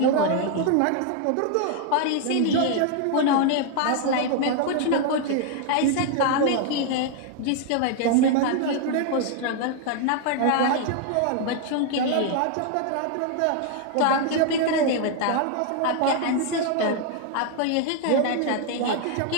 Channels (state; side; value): different; both; correlation 0.00